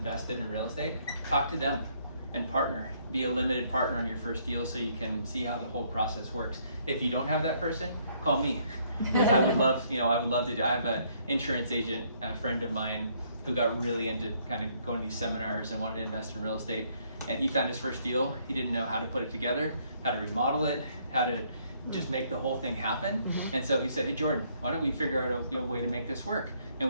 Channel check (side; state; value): both; inverted; correlation -0.68